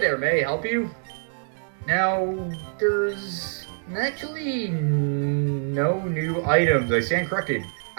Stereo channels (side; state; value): left; silent; digital silence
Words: may I help you? Now, there's actually no new items, I stand corrected.